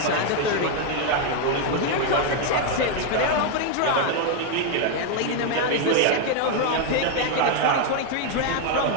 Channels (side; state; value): both; different; correlation 0.01